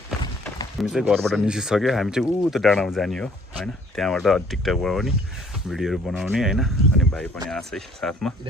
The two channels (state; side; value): normal; both; correlation 0.58